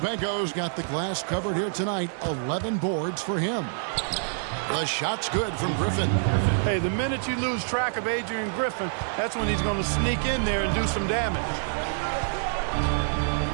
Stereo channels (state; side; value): silent; left; digital silence